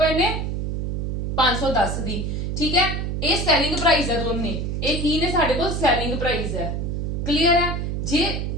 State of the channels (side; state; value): right; noise; hum, 2 dB below the sound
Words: ਨੇ? 510 ਦੀ। ਠੀਕ ਹੈ, ਇਹ ਸੈਲਿੰਗ ਪ੍ਰਾਈਸ ਹੈ ਦੋਨੇ। ਇਹ ਕੀ ਨੇ? ਸਾਡੇ ਕੋਲ ਸੈਲਿੰਗ ਪ੍ਰਾਈਸ ਹੈ। ਕਲੀਅਰ ਹੈ? ਜੇ